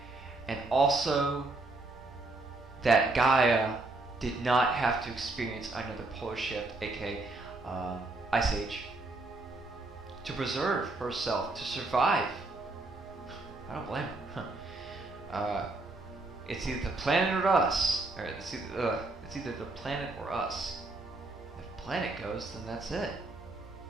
And also that Gaia did not have to experience another polar shift, aka ice age, to preserve herself, to survive. I don't blame her. It's either the planet or us. Or it's either the planet or us. If the planet goes, then that's it.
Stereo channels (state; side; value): quieter; left; 3.2 dB